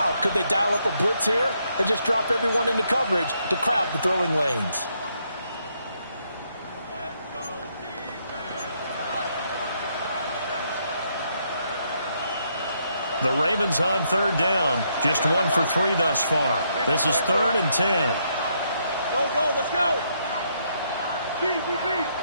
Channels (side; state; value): both; inverted; correlation -0.75